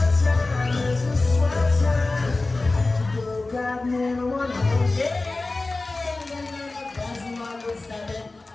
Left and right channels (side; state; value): right; quieter; 3.3 dB